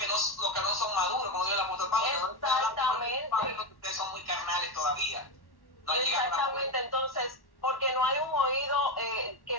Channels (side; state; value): right; late; 1.1 ms